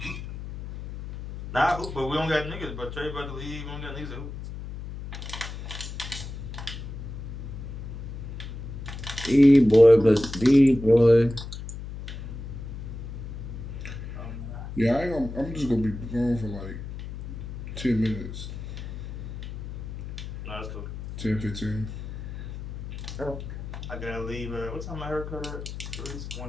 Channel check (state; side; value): noise; left; hum, 9 dB below the sound